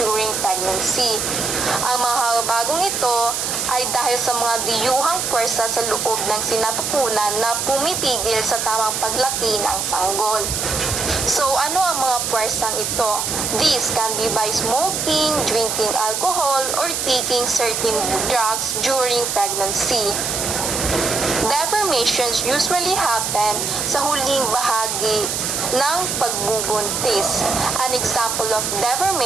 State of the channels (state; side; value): noise; right; hiss, 1 dB below the sound